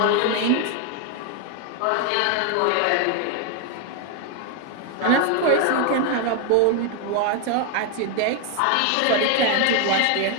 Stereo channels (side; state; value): both; different; correlation 0.01